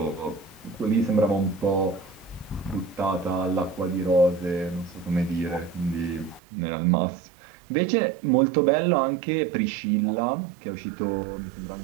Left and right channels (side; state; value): left; drops out; at 6.4 s